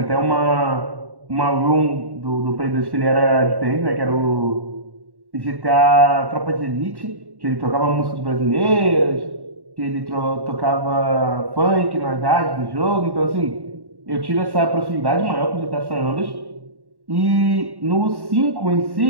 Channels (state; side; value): late; left; 1.1 ms